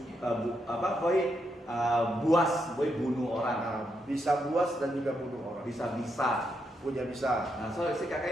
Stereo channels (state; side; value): normal; both; correlation 0.81